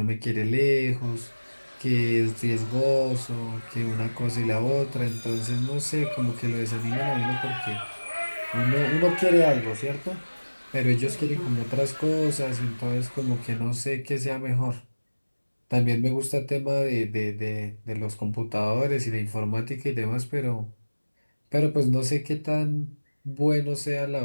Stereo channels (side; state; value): both; inverted; correlation -1.00